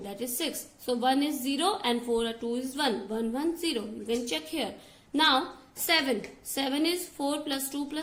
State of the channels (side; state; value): both; identical; correlation 1.00